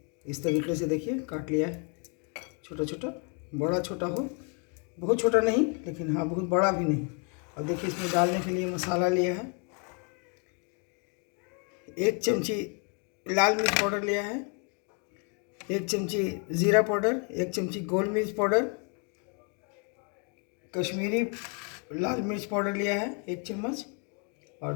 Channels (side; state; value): right; quieter; 37.3 dB